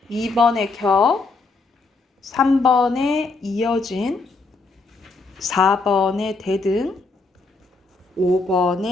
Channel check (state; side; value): quieter; right; 3.8 dB